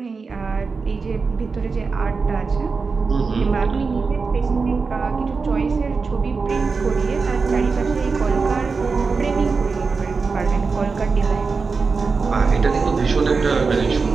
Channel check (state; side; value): quieter; left; 4.7 dB